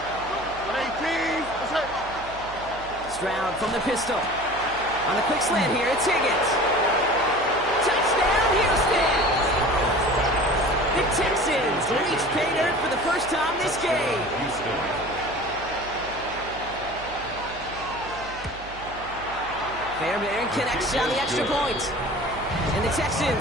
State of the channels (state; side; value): noise; right; hum, 16 dB below the sound